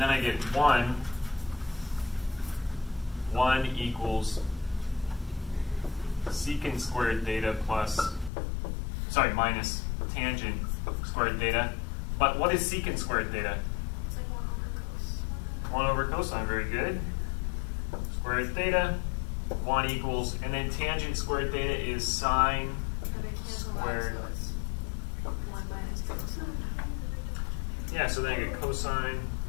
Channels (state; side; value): drops out; right; at 8.3 s